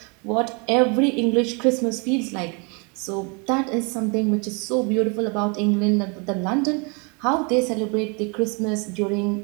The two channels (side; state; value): left; quieter; 32.7 dB